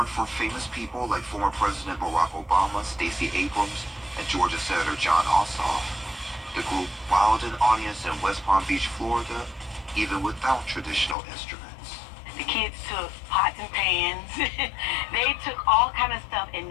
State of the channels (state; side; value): drops out; right; at 11.2 s